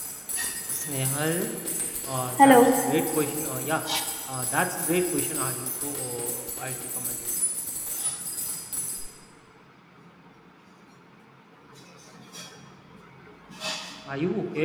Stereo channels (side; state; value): both; identical; correlation 1.00